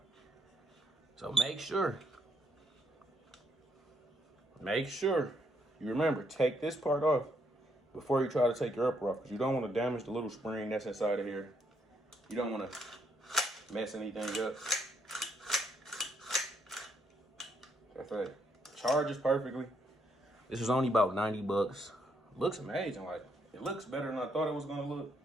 So make sure you remember, take this part off before you try to take your upper off, because you don't want to damage the little spring that's inside of here. You don't want to mess anything up. That's it. Charges perfectly. This was only about 90 bucks. Looks amazing. Like, it looks better than I thought it was gonna look.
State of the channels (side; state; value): both; normal; correlation 0.74